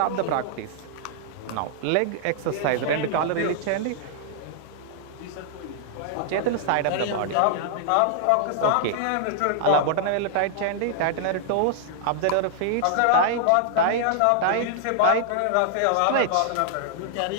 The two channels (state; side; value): different; both; correlation -0.01